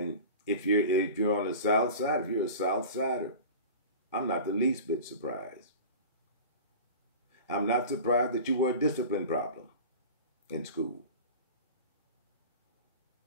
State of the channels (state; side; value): inverted; both; correlation -0.35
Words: if you're on the South Side, if you're a South Sider, I'm not the least bit surprised. I'm not surprised that you were a discipline problem in school.